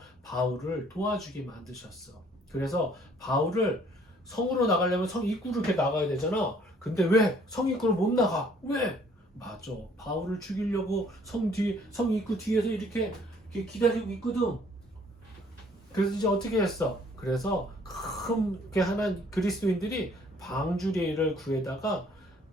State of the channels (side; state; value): both; normal; correlation 0.60